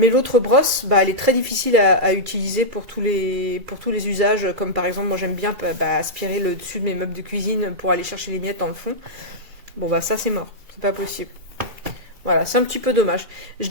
l'autre brosse, bah, elle est très difficile à utiliser pour tous les usages, comme par exemple, moi j'aime bien aspirer le dessus de mes meubles de cuisine pour aller chercher les miettes dans le fond. Bon bah ça c'est mort. C'est pas possible. Voilà, c'est un petit peu dommage. Je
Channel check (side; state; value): left; late; 2.4 ms